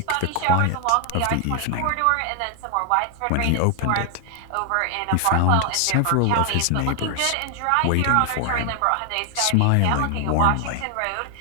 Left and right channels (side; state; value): both; different; correlation 0.00